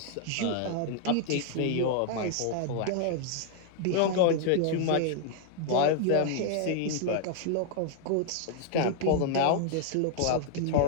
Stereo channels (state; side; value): different; both; correlation 0.00